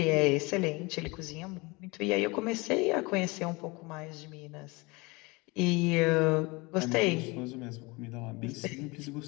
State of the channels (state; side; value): quieter; right; 25.4 dB